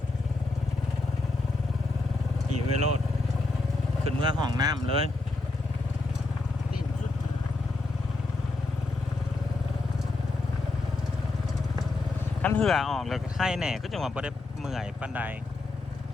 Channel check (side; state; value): right; quieter; 3.2 dB